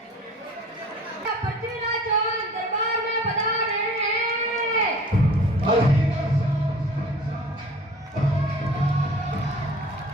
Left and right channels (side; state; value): both; normal; correlation 0.46